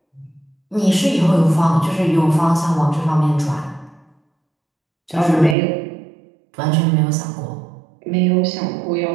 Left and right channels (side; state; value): left; drops out; at 5.6 s